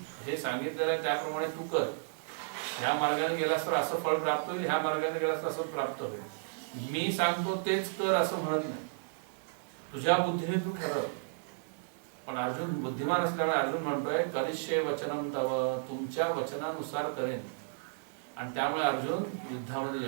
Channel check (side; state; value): left; silent; 56 dB below the other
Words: हे सांगितलेलं आहे त्याप्रमाणे तू कर. ह्या मार्गाने गेलास तर असं फळ प्राप्त होईल, ह्या मार्गाने गेलास तर असं प्राप्त होईल. मी सांगतो तेच कर असं म्हणत नाही, तुझ्या बुद्धीने तू ठरव. पण अर्जुन बुद्धिमान असल्यामुळे अर्जुन म्हणतोय करिष्ये वचनम तव, तुमच्या वचनानुसार करेन. आणि त्यामुळे अर्जुन युद्धामध्ये